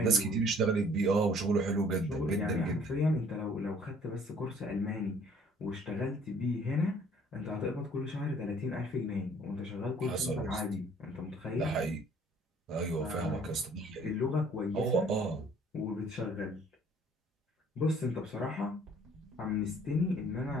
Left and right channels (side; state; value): both; normal; correlation 0.57